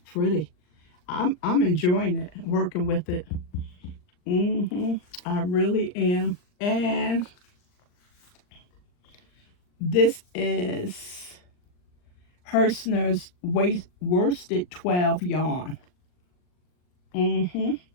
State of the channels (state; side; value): late; right; 39 ms